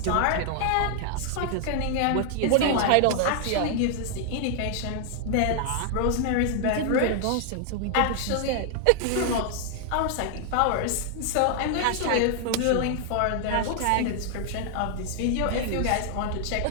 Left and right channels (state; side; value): different; both; correlation 0.00